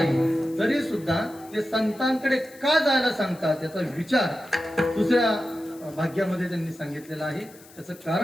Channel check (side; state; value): left; noise; hiss, 23 dB below the sound